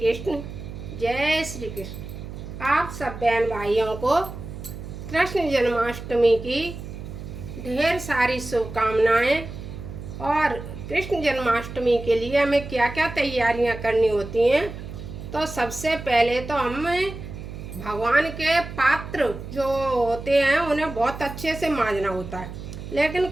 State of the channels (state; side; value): noise; right; hum, 10 dB below the sound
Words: जय श्री कृष्ण। आप सब बहन भाइयों को कृष्ण जन्माष्टमी की ढेर सारी शुभकामनाएं। और कृष्ण जन्माष्टमी के लिए हमें क्या क्या तैयारियां करनी होती हैं, तो सबसे पहले तो हमें भगवान के पात्र जो होते हैं उन्हें बहुत अच्छे से मांजना होता है। लेकिन